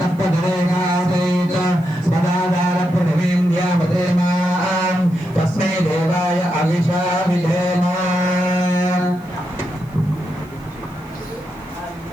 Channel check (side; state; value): left; noise; hiss, 29 dB below the sound